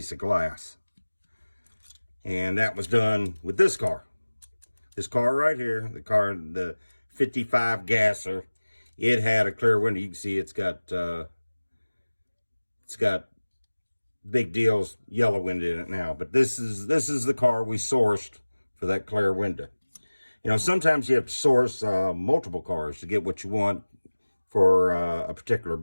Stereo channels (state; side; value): inverted; both; correlation -1.00